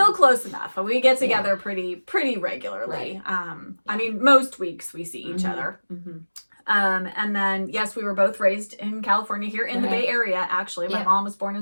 close enough. We get together pretty regularly. I mean, most weeks we see each other. And then, yes, we were both raised in California, here in the Bay Area, actually. My mom was born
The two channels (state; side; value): inverted; both; correlation -1.00